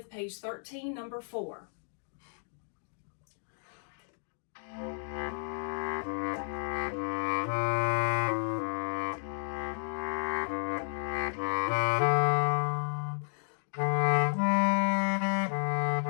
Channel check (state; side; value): silent; right; 56 dB below the other